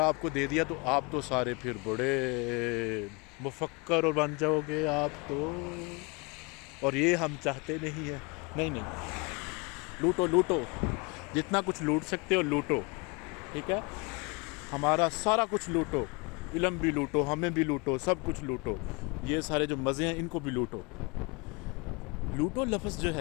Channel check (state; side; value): quieter; right; 29.6 dB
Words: आपको दे दिया तो आप तो सारे फिर बड़े मुफक्कर और बन जाओगे आप तो, और ये हम चाहते नहीं है। नहीं, लूटो लूटो, जितना कुछ लूट सकते हो लूटो, ठीक है, हमारा सारा कुछ लूटो, इल्म भी लूटो, हमें भी लूटो, सब कुछ लूटो, ये सारे जो मज़े हैं इनको भी लूटो। लूटो लफ्ज़ जो